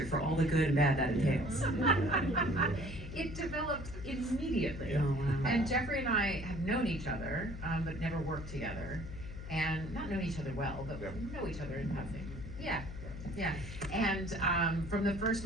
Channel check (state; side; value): noise; left; hum, 10 dB below the sound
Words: for all the good and bad that entails? It developed immediately. Oh, wow. And Jeffrey and I have known each other, but never worked together. And not known each other well, but know each other in passing. Yeah. And from the first